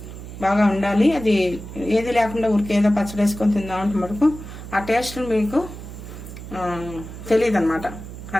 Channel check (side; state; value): right; noise; hum, 12 dB below the sound